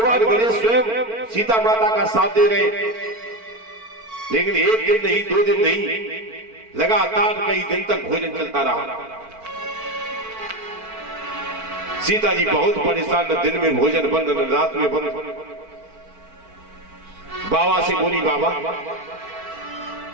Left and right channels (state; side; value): late; left; 4.5 ms